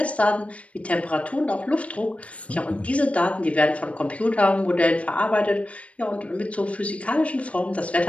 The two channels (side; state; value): right; late; 0.064 ms